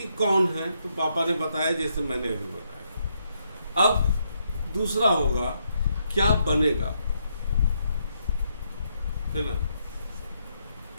कौन है, तो पापा ने बताया जैसे मैंने अभी बताया। अब दूसरा होगा क्या बनेगा, है ना।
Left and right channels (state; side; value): inverted; both; correlation -0.77